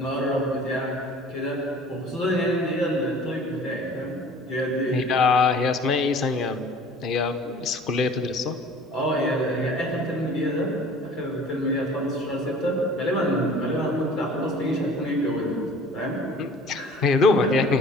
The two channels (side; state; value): both; normal; correlation 0.47